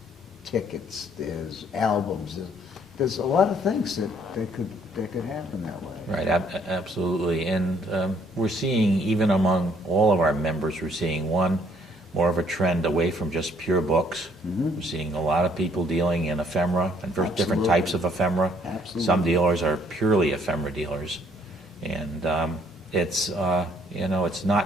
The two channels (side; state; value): both; normal; correlation 0.63